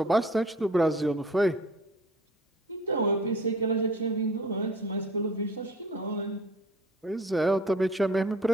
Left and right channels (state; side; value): normal; both; correlation 0.47